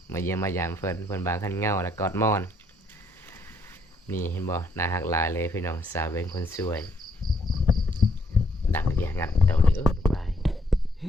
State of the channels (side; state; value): both; normal; correlation 0.71